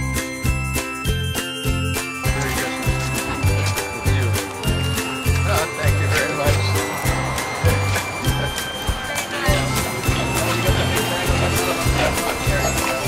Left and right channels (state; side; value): identical; both; correlation 1.00